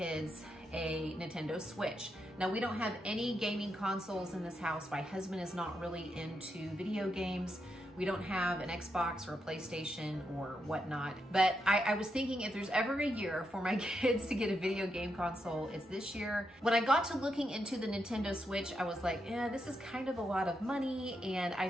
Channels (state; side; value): normal; both; correlation 0.83